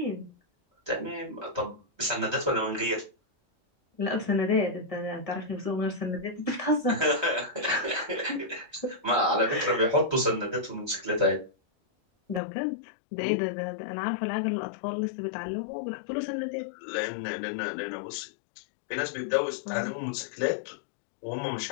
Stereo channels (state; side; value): drops out; right; at 12.4 s